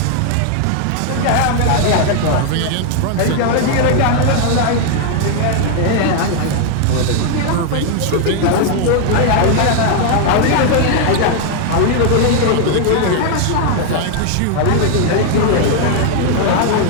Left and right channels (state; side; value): different; both; correlation 0.00